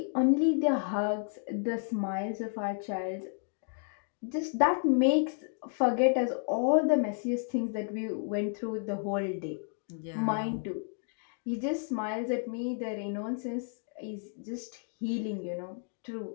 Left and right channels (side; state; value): right; silent; 57 dB below the other